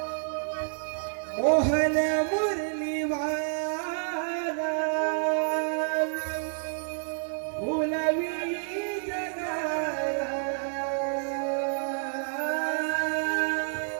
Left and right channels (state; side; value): silent; left; digital silence